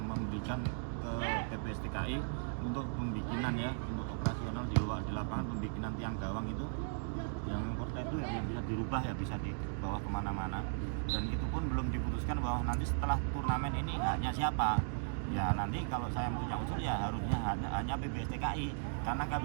ke PPSTKI untuk pembikinan ya untuk operasional di lapangan pembikinan tiang gawang itu yang porta itu yang bisa dirubah ya bisa dibawa kemana-mana dan itu pun belum diputuskan bahwa nanti setelah turnamen ini haknya siapa Ya nanti kalau saya punya usul ya harusnya hanya PBSTKI karena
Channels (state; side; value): silent; left; digital silence